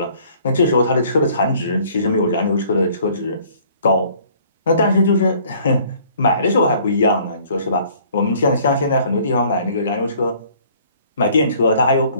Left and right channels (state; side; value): inverted; both; correlation -0.57